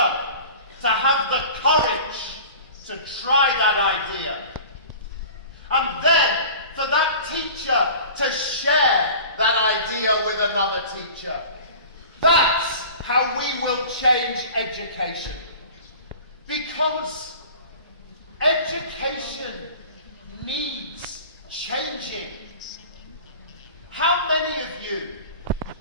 to have the courage to try that idea. And then for that teacher to share that idea with another teacher. That's how we will change education. Because education needs changing. How many of you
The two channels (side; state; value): both; inverted; correlation -0.40